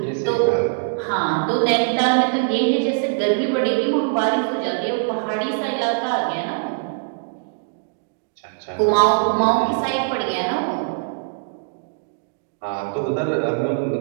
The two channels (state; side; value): silent; left; digital silence